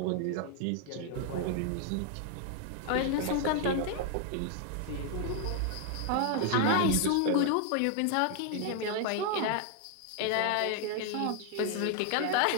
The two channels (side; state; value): both; different; correlation 0.00